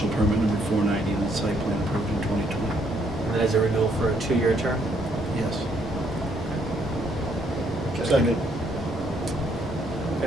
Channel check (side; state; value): both; normal; correlation 0.69